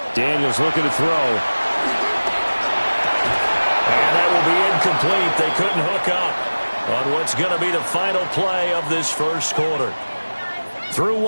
Daniels looking to throw. And that will be incomplete. They couldn't hook up on what's going to be the final play of this first quarter. Through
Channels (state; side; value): inverted; both; correlation -1.00